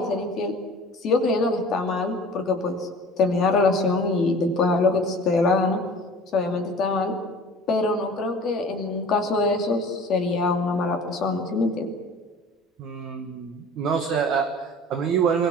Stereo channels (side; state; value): both; normal; correlation 0.44